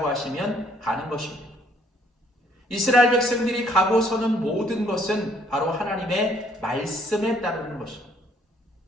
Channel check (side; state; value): both; normal; correlation 0.64